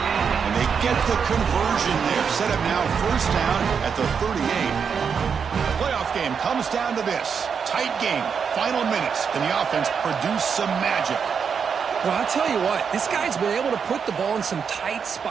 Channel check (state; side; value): quieter; left; 6.5 dB